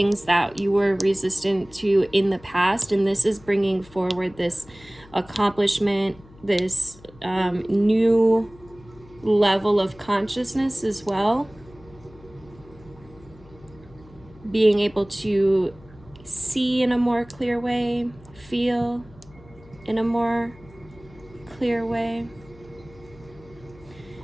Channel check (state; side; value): noise; left; hum, 23 dB below the sound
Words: that you were resistant to in the past. And this is bringing forward this accomplishment, this new level of consciousness as well. Being able to see in a more clear way, feel in a more clear way.